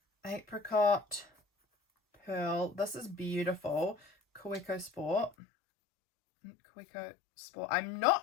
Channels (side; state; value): right; drops out; at 5.4 s